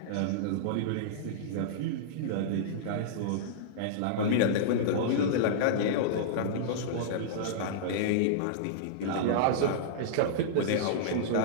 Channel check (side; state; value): both; different; correlation -0.03